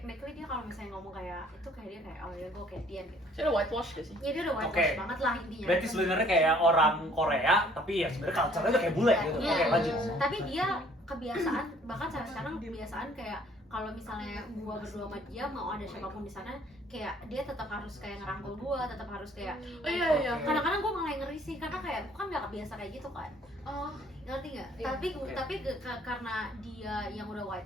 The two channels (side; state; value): both; normal; correlation 0.59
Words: dia kalau misalnya ngomong kayak itu kayak dia kayak oh ya gua kayak dia gitu. Saya udah whitewash gak sih? Ya dia udah whitewash Oke. banget lah intinya. Berarti sebenarnya kayak orang Korea, tapi ya sebenarnya culture-nya tuh kayak bule gitu. Iya. Oke, lanjut. Tapi dia kebiasaan bahkan sampai sekarang kebiasaan kayak kalau misalnya gua berdua sama dia mau ada siapapun di sana kayak dia tetap harus kayak ngerangkul gua, tetap harus kayak Oh iya iya. Oke. kadang-kadang gua malah yang ngeri sih karena kayak gua kan nggak kebiasa kayak gitu kan. Oh, Ngerti nggak? Iya, oke. Tapi karena dia yang udah